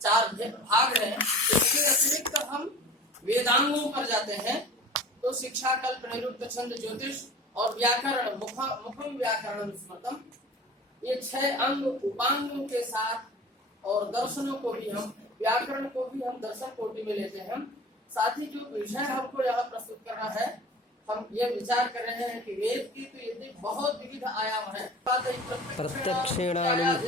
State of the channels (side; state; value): both; normal; correlation 0.40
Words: 4 भाग हैं, इसके अतिरिक्त हम वेदांगों पर जाते हैं। तो शिक्षा, कल्प, निरुक्त, छंद, ज्योतिष और व्याकरण, मुखम व्याकरण स्मृतम, ये 6 अंग उपांगों के साथ और दर्शनों को भी हम, व्याकरण को भी हम दर्शन कोटि में लेते हैं। साथ ही जो विषय हमको यहाँ प्रस्तुत करना है, हम ये विचार कर रहे हैं कि वेद की तो ये बहुत विविध आयाम है।